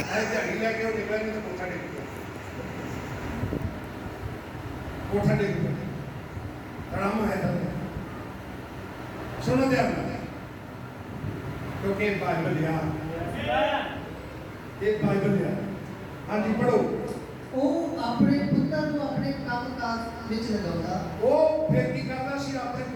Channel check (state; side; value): identical; both; correlation 1.00